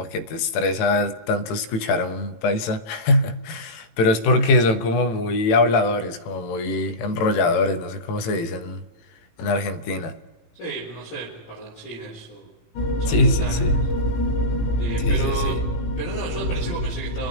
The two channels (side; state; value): right; late; 18 ms